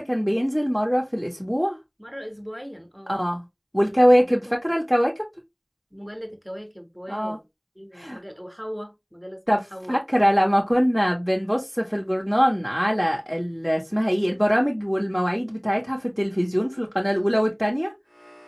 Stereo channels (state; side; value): identical; both; correlation 1.00